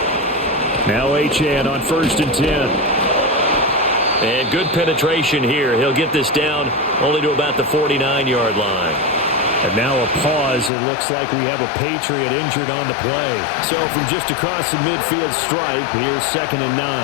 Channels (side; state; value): right; drops out; at 10.7 s